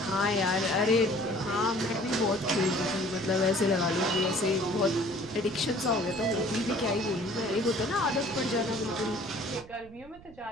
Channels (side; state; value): right; noise; rumble, 21 dB below the sound